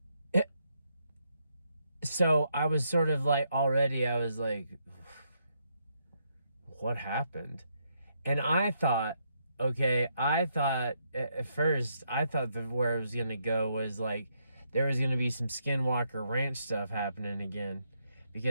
so I was sort of like, already I was like, what happened? And I thought at first, I thought that where it was going to go was like, there was going to be some Skinwalker Ranch stuff happening again.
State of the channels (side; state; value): both; inverted; correlation -0.77